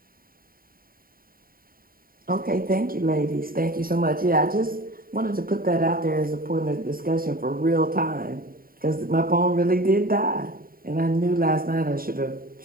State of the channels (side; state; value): left; late; 0.42 ms